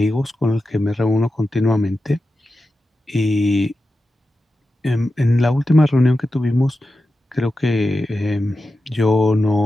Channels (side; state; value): both; normal; correlation 0.92